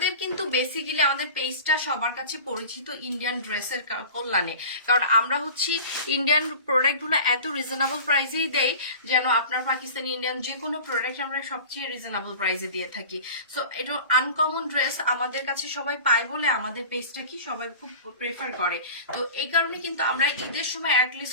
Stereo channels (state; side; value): inverted; both; correlation -0.37